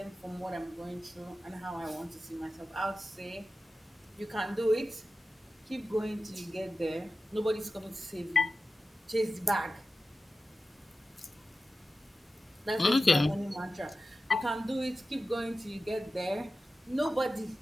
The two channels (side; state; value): both; normal; correlation 0.94